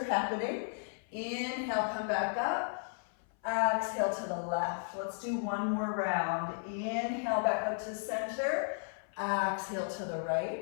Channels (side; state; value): right; silent; 55 dB below the other